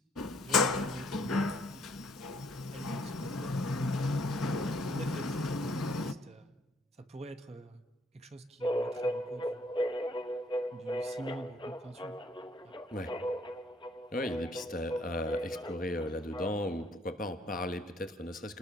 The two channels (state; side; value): normal; both; correlation 0.64